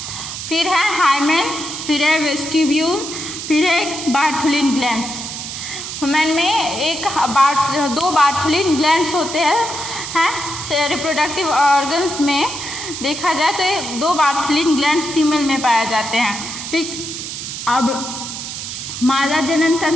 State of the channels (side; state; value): right; noise; hiss, 7 dB below the sound